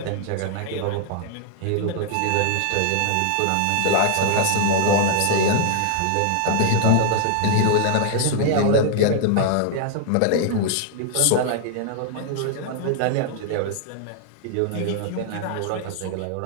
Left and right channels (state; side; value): different; both; correlation -0.01